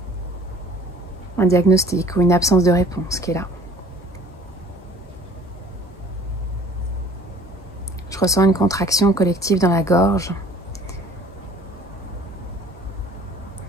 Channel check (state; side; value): normal; both; correlation 0.51